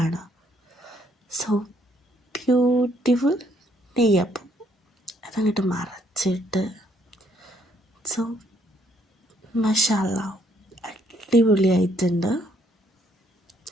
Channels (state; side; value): normal; both; correlation 0.69